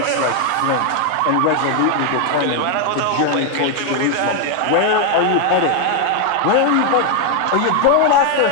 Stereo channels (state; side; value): different; both; correlation 0.01